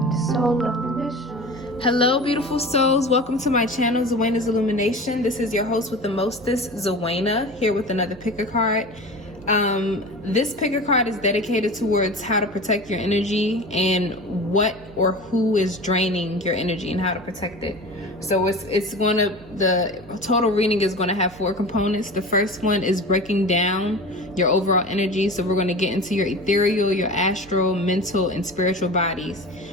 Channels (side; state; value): right; noise; hum, 22 dB below the sound